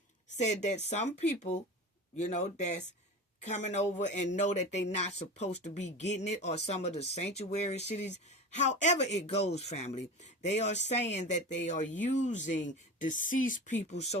said that some people, you know, that's coming over and know that they're not supposed to be getting it, or some of the sanctuary cities. However it goes, family, they are saying that they are using deceased people's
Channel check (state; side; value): normal; both; correlation 0.30